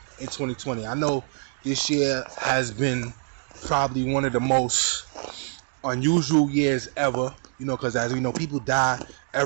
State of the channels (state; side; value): silent; left; 56 dB below the other